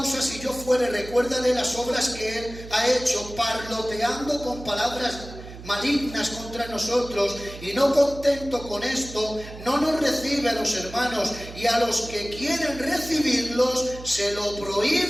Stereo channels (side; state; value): right; noise; hum, 14 dB below the sound